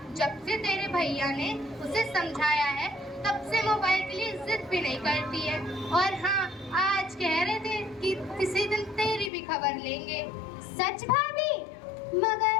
जब से तेरे भैया ने उसे समझाया है तब से मोबाइल के लिए जिद भी नहीं करती है। और हाँ, आज कह रहे थे कि किसी दिन तेरी भी खबर लेंगे। सच भाभी?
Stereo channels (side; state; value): right; drops out; at 9.3 s